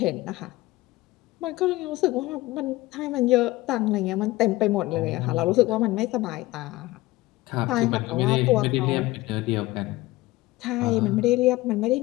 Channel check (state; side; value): quieter; right; 18.9 dB